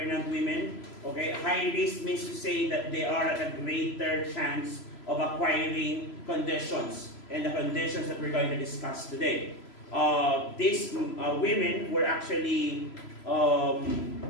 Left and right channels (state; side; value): late; right; 3.0 ms